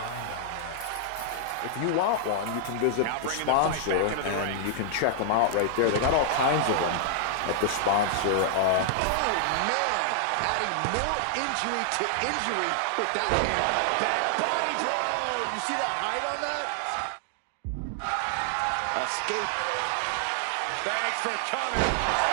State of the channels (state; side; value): different; both; correlation -0.01